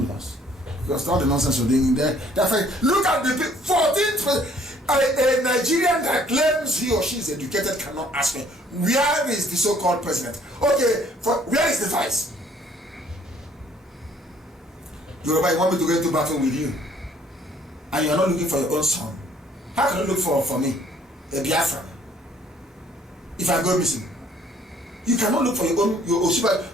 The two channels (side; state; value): both; normal; correlation 0.61